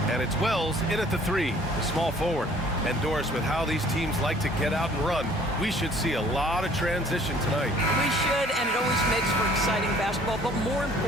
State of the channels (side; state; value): both; normal; correlation 0.55